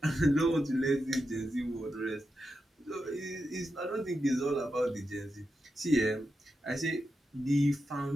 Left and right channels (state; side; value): normal; both; correlation 0.88